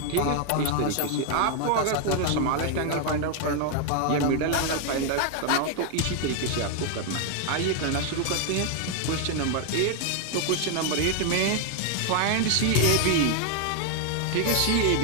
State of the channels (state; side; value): different; both; correlation 0.00